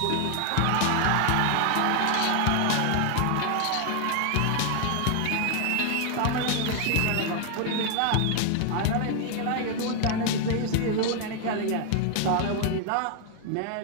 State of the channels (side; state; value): both; different; correlation 0.00